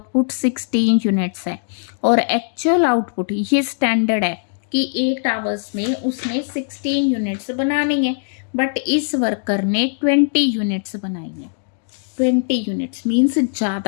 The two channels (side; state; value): right; silent; digital silence